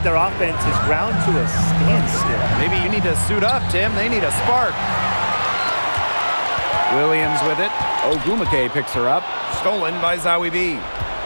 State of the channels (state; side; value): inverted; both; correlation -1.00